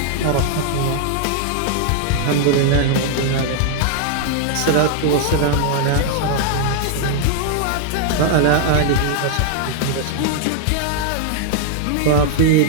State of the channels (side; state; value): both; different; correlation 0.00